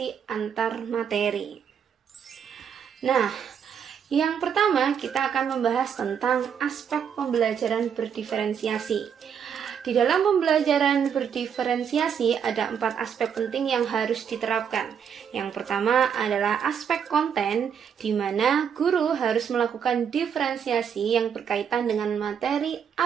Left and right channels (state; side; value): quieter; left; 7.7 dB